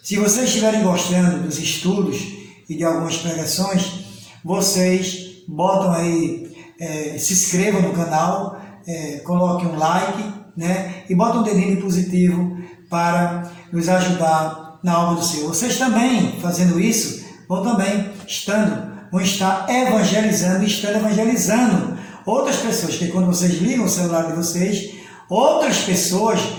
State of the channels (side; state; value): both; identical; correlation 1.00